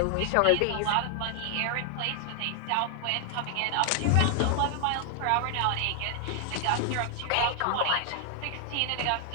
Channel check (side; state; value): both; different; correlation 0.00